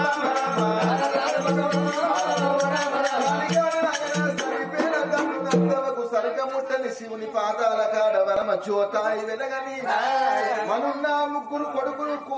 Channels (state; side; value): identical; both; correlation 1.00